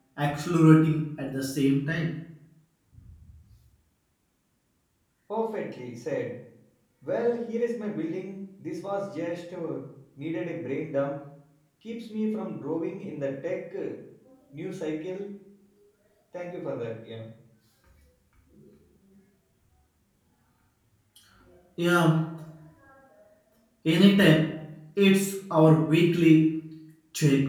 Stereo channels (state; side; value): identical; both; correlation 1.00